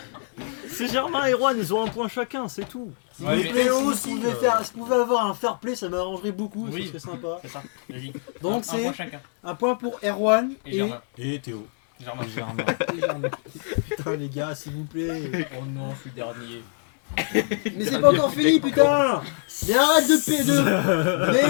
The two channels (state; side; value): silent; right; 62 dB below the other